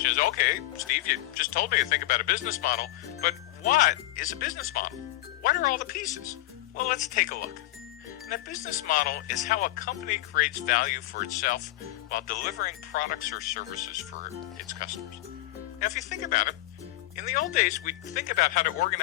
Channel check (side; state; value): right; quieter; 17.3 dB